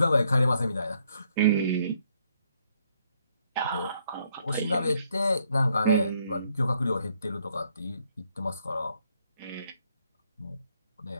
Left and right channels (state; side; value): inverted; both; correlation -0.71